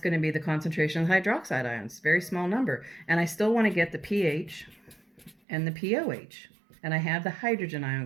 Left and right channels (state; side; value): drops out; left; at 5.4 s